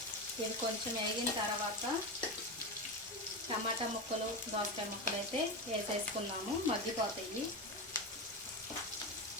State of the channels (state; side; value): normal; both; correlation 0.18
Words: ఇది కొంచెం వేగిన తర్వాత టమాటా ముక్కలు, దోసకాయ ముక్కలు అయితే వేసేసుకున్నాము. మగ్గిపోతాయి.